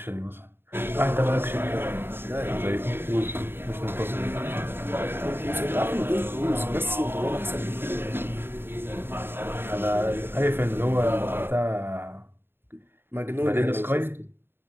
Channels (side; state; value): left; late; 0.11 ms